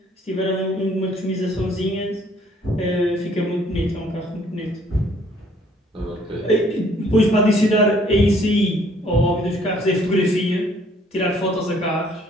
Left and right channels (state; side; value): normal; both; correlation 0.62